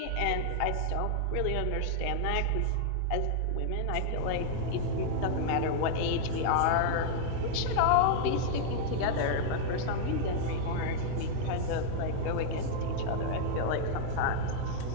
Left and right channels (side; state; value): both; different; correlation 0.00